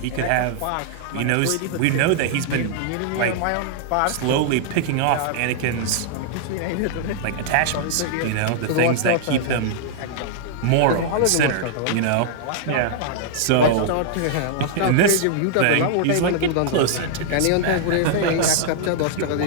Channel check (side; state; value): both; different; correlation -0.01